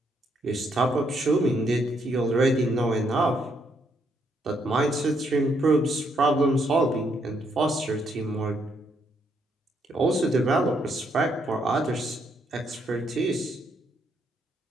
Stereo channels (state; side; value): normal; both; correlation 0.74